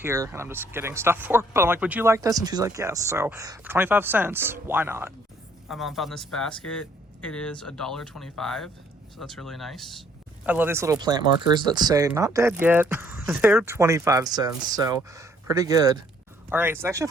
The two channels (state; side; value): normal; both; correlation 0.64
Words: and I'm just getting stuff for her, but I'm would you like this? And she's like, yes. So for 25 cents, why not? My mom found this basket. It is $1.25, so that's really nice. I love these little plant markers that say not dead yet. They're 25 cents, so pretty good. All right, so they actually